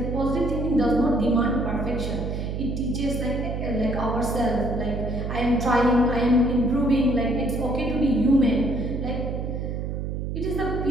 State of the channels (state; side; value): noise; right; hum, 3 dB below the sound